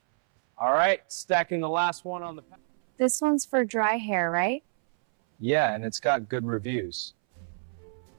All right, stacking the last one on the... This one's for dry hair, right? Yeah, and it's got good reviews.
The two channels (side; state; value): left; silent; 60 dB below the other